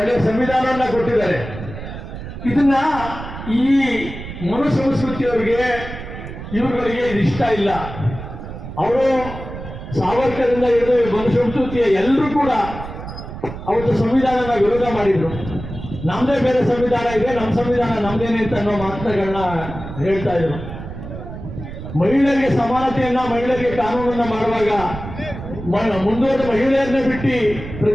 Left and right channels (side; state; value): right; noise; rumble, 10 dB below the sound